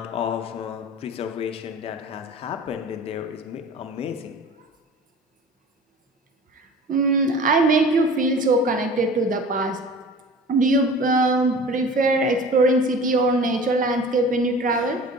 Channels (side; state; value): both; normal; correlation 0.41